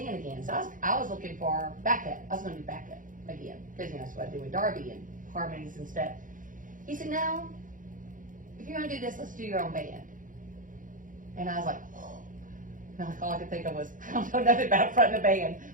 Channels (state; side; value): late; left; 0.38 ms